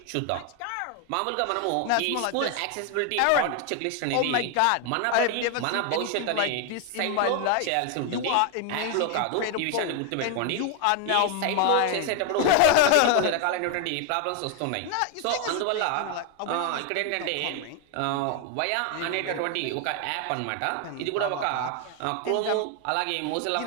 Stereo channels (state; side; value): different; both; correlation 0.01